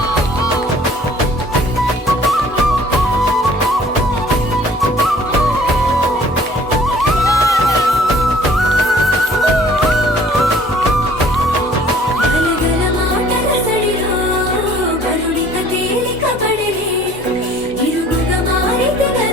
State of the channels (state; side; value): normal; both; correlation 0.54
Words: గలగల మాటల సడిలో కరుణిక తేలిక పడిలే ఇరుగుగా మారితే